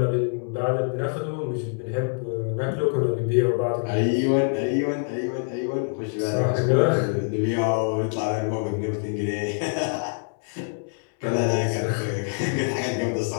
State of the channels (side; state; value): right; silent; 62 dB below the other